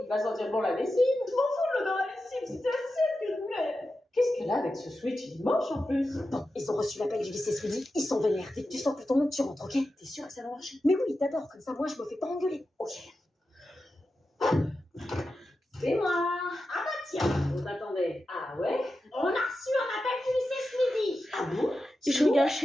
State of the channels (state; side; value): normal; both; correlation 0.91